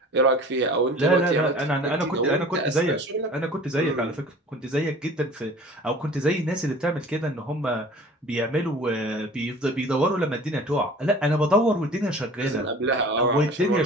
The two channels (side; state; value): both; normal; correlation 0.44